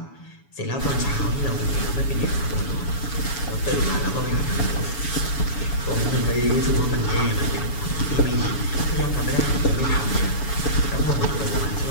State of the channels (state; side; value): late; right; 7.1 ms